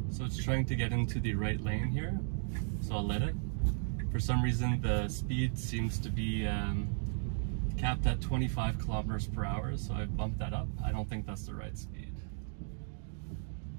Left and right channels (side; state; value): left; silent; digital silence